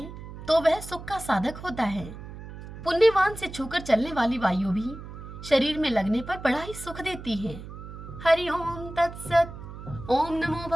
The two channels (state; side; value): noise; right; hum, 12 dB below the sound